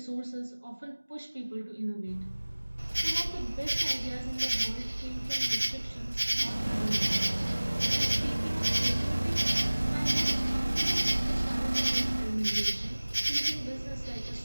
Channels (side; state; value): both; inverted; correlation -1.00